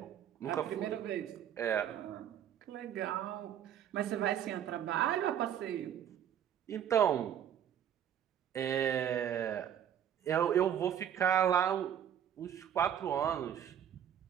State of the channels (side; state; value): left; quieter; 9.8 dB